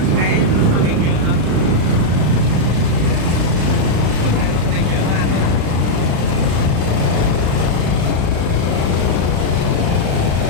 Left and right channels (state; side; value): late; left; 36 ms